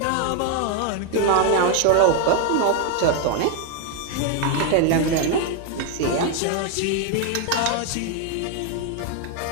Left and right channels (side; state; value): both; different; correlation 0.01